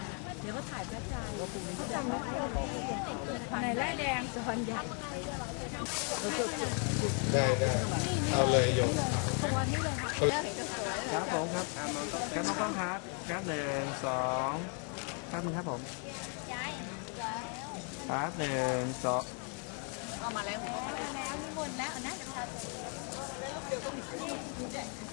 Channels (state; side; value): quieter; right; 39.1 dB